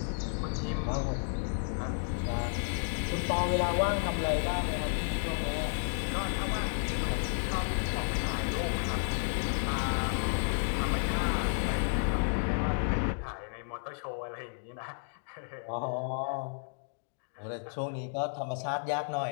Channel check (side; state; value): right; silent; digital silence